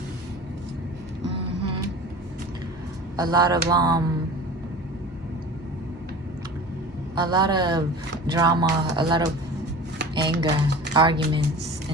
A lot of drama, a lot of anger, arguments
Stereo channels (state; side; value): normal; both; correlation 0.38